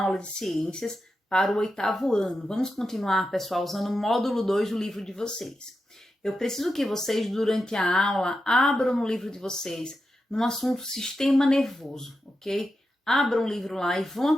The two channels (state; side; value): normal; both; correlation 0.88